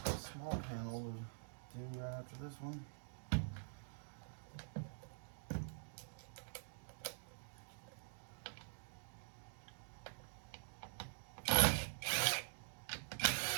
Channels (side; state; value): left; silent; digital silence